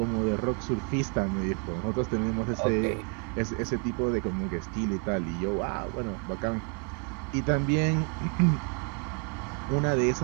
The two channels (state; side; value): quieter; left; 38.0 dB